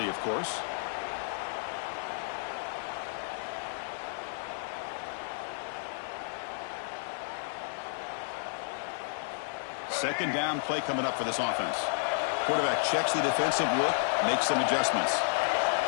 of course. Second down play coming up for this offense. Quarterback checks the defensive look, makes some adjustments.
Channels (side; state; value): right; silent; 57 dB below the other